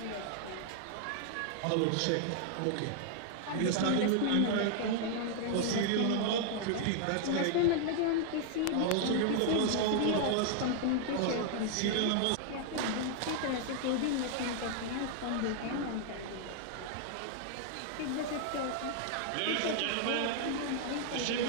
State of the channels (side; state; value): both; different; correlation 0.00